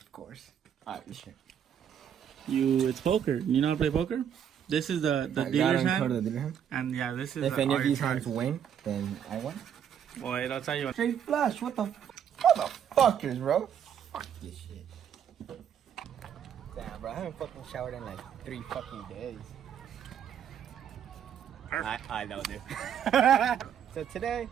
of course. Alright, this shit. It's poker. You know how to play poker? This is the dealer's hand. And yeah, this is if any of these hands win, then I win. Boy, I'll tell you what. Straight flush, what the motherfuckers, bro? Fuck this shit. Damn, bro, I haven't fucking showered in like 3 fucking days. I know, dude. So today,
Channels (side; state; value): left; quieter; 8.8 dB